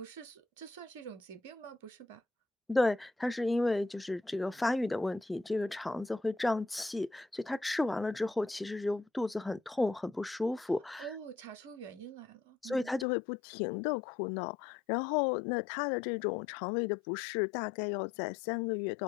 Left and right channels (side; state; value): right; drops out; at 13.1 s